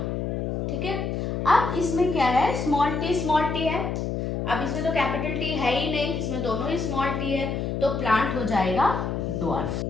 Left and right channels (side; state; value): left; noise; hum, 2 dB below the sound